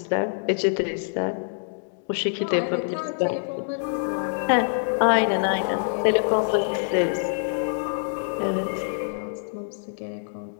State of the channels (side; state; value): right; silent; digital silence